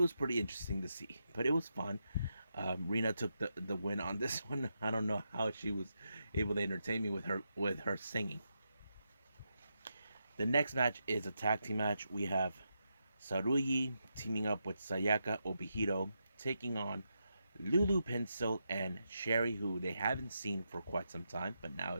pretty interesting to see. But it was fun. Rena took the win on this one. I don't know how she was able to entertain me with her singing. The next match is a tag team match. We have Saruyi teaming up with Sayaka Obihiro, taking on Lulu Pencil and Sherry, who they haven't seen for quite some time, but now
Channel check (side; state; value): both; inverted; correlation -0.85